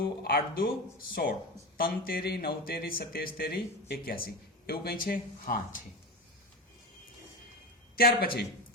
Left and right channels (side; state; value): both; normal; correlation 0.22